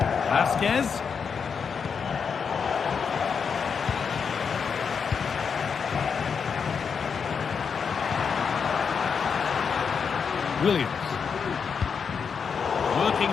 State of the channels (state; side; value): quieter; right; 6.2 dB